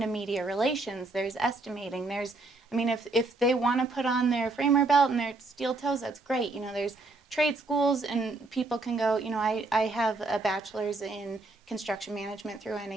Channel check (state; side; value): quieter; left; 3.2 dB